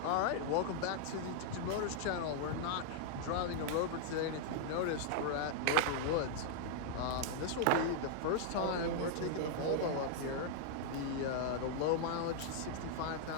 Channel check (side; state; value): both; different; correlation -0.01